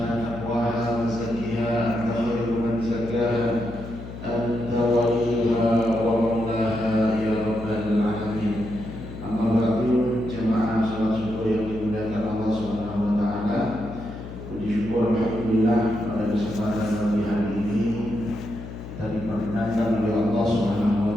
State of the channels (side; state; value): left; noise; hum, 11 dB below the sound